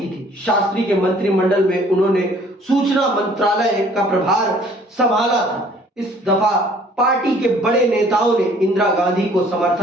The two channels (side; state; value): both; normal; correlation 0.56